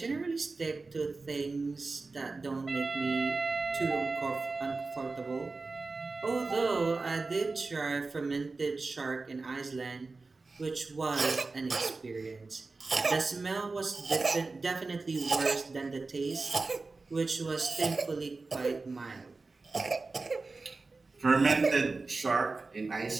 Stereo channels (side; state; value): left; quieter; 3.8 dB